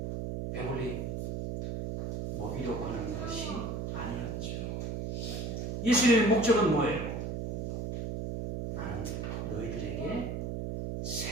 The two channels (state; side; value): noise; right; hum, 3 dB below the sound